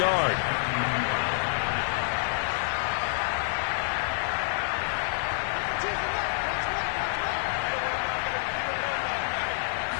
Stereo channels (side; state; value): right; silent; 58 dB below the other